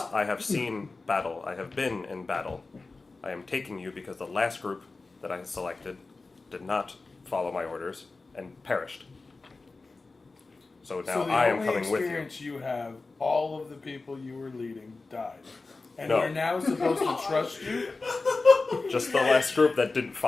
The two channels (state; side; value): quieter; right; 3.7 dB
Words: I have seen battle. I have been in battle. I am taking you because the last group that I selected did not follow my orders and perished. So now so the I am only coming with you." experience you have, all of the people you were leading died, and No. we're now supposed to trust you. Just the last group that didn't